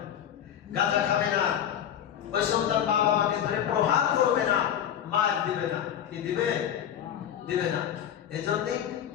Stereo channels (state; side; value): quieter; right; 9.8 dB